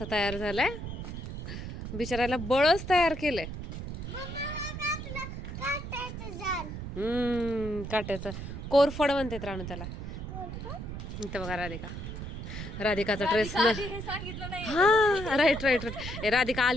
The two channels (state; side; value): noise; right; rumble, 7 dB below the sound